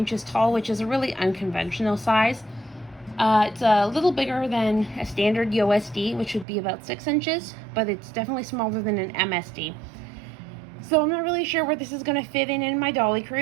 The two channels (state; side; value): drops out; left; at 6.5 s